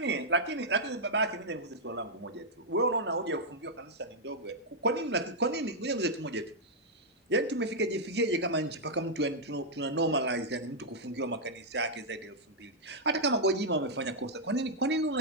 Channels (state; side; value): normal; both; correlation -0.05